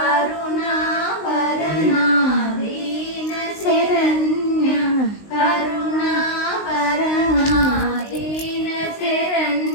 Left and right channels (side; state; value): right; late; 19 ms